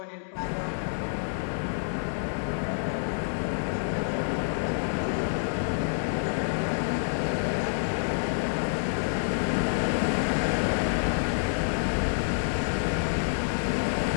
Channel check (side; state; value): right; silent; digital silence